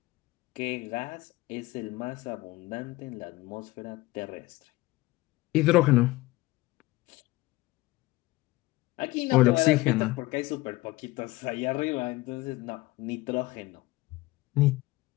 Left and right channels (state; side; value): quieter; right; 20.0 dB